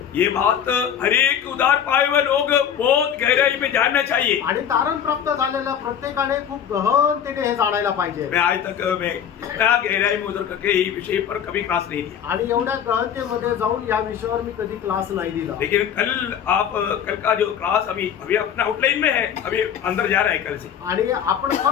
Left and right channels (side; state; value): right; quieter; 8.8 dB